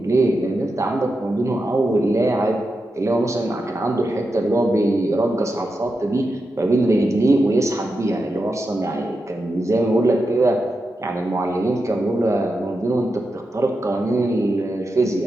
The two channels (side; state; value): both; normal; correlation 0.88